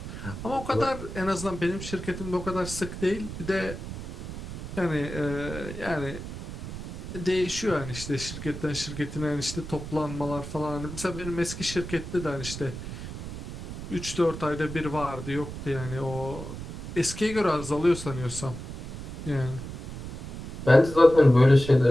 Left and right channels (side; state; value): right; noise; rumble, 9 dB below the sound